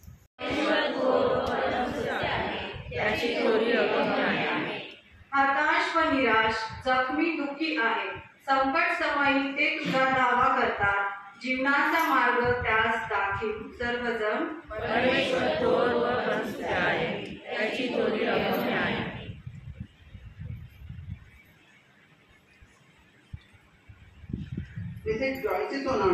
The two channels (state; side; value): identical; both; correlation 1.00